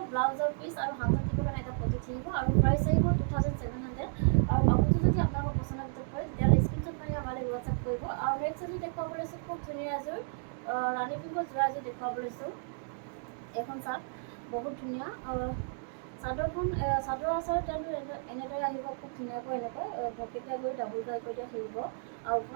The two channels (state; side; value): silent; left; digital silence